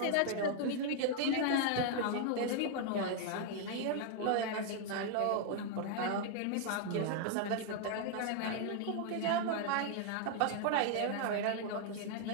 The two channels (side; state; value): both; different; correlation 0.00